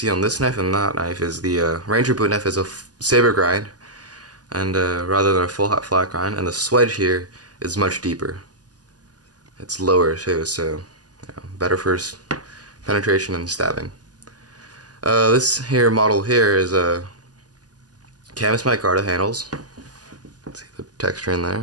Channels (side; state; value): left; late; 0.68 ms